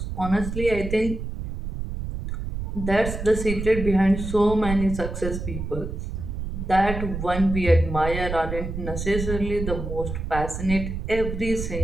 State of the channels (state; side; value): noise; right; rumble, 6 dB below the sound